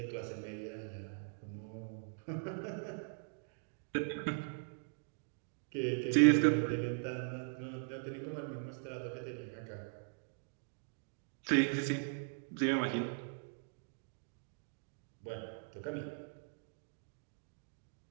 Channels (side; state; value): left; silent; digital silence